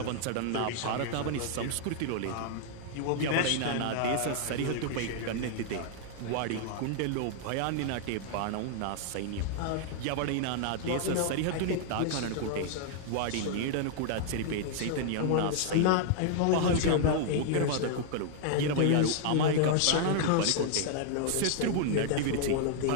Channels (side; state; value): both; different; correlation 0.00